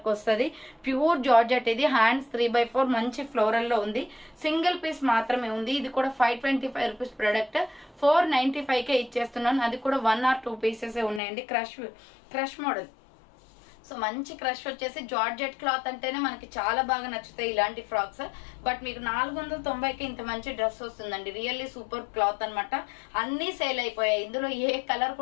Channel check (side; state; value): right; drops out; at 11.2 s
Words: వస్తుంది. ప్యూర్ జార్జెట్ ఇది. హ్యాండ్స్ 3/4 మంచి ఫ్లోరల్ లో ఉంది. సింగిల్ పీస్ మాత్రమే ఉంది. ఇది కూడా 525 రూపీస్ ప్రొడక్ట్. 495 కే ఇచ్చేస్తున్నాను. అది కూడా 1 or 2 పీసెస్ ఉన్నాయండి. Crush model. సో మంచి క్రష్ వచ్చేసి జార్జెట్ క్లాత్ అంటేనే మనకి చాలా బాగా నచ్చుతాయి ఇలాంటి ఫ్రాక్స్. బట్ మీకు 490కి ఇంత మంచి డ్రెస్ వస్తుందండి. రియల్లీ సూపర్ క్లాత్ అనమాట. అన్ని సేల్ అయిపోయాయి. ఇందులో ఏ కలర్